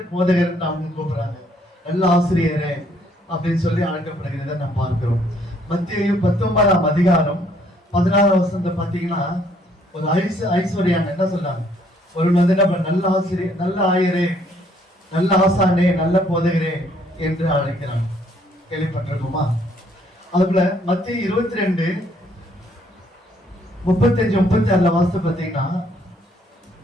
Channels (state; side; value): normal; both; correlation 0.66